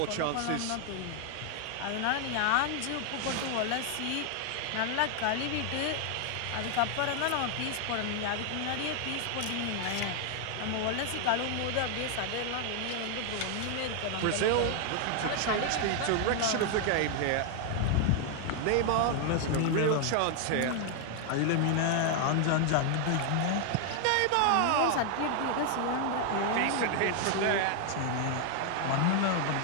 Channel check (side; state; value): both; different; correlation 0.00